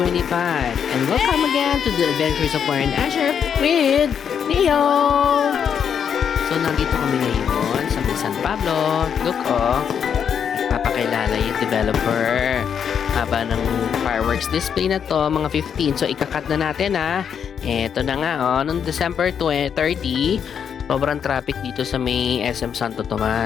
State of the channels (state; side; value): quieter; right; 7.7 dB